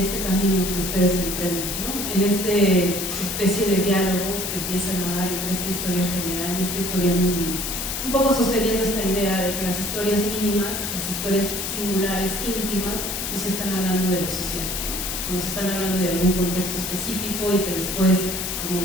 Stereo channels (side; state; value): left; noise; hiss, 3 dB below the sound